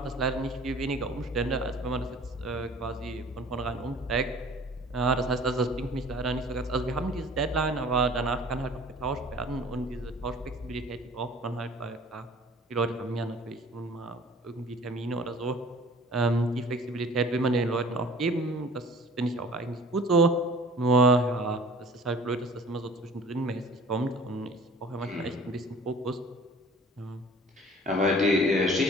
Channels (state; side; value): normal; both; correlation 0.48